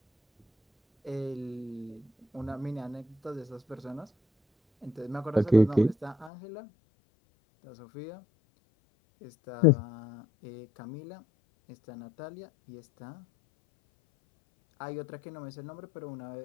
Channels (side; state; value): right; drops out; at 6.3 s